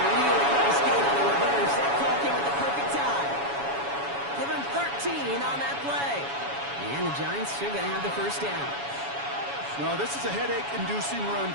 really nice gain on the reverse. That call came at the perfect time. Give him 13 on that play. And the Giants are going to have the 1st down. Well, this is a headache-inducing run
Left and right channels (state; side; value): late; left; 7.1 ms